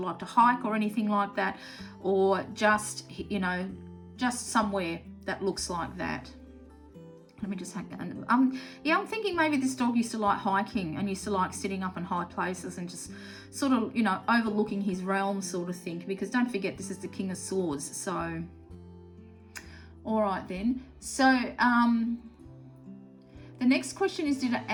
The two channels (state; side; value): identical; both; correlation 1.00